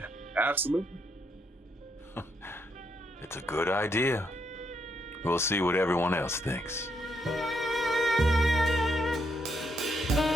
absolutely. It's a good idea. We'll see what everyone else thinks.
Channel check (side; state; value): both; normal; correlation 0.77